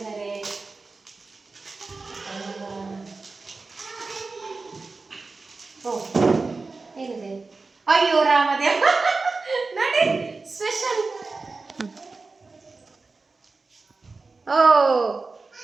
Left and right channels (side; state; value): left; quieter; 3.9 dB